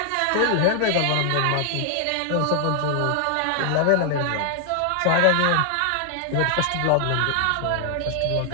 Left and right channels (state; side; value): different; both; correlation 0.00